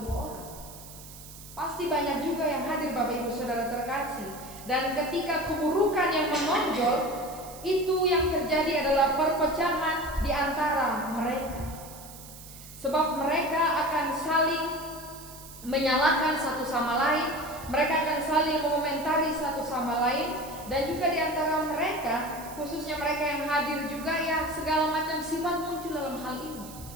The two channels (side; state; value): right; noise; hiss, 16 dB below the sound